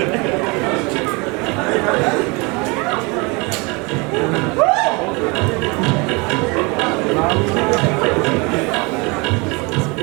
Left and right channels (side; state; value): left; quieter; 28.1 dB